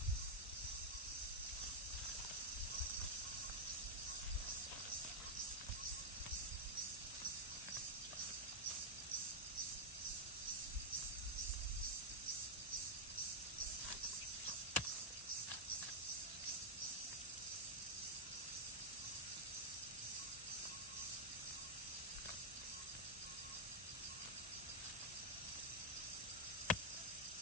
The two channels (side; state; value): both; normal; correlation -0.03